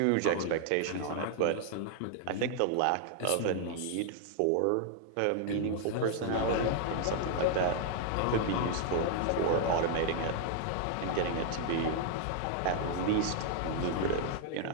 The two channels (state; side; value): different; both; correlation 0.00